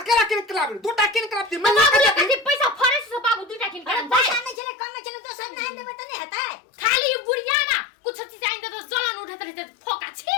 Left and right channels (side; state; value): right; drops out; at 4.6 s